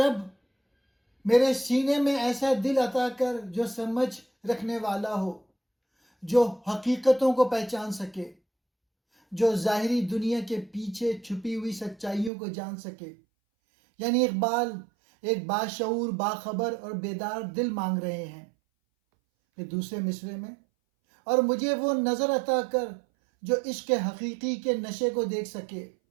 میرے سینے میں ایسا دل عطا کر جو سمجھ رکھنے والا ہو، جو حقیقتوں کو پہچان سکے، جو ظاہری دنیا کے پیچھے چھپی ہوئی سچائیوں کو جان سکے۔ یعنی اقبال ایک باشعور، باخبر اور بیدار دل مانگ رہے ہیں۔ پھر دوسرے مصرعے میں، اور مجھے وہ نظر عطا کر جو عشق حقیقی کے نشے کو دیکھ سکے،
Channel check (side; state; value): left; drops out; at 12.3 s